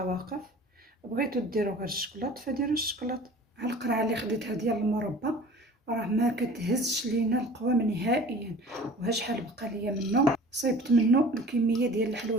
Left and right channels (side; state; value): both; normal; correlation 0.44